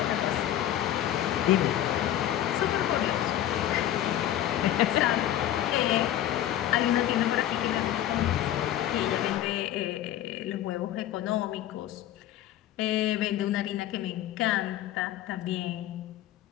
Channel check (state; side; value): quieter; right; 12.3 dB